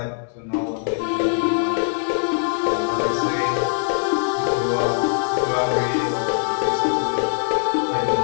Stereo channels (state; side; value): silent; right; digital silence